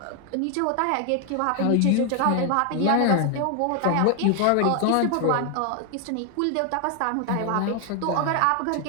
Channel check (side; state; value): both; different; correlation 0.01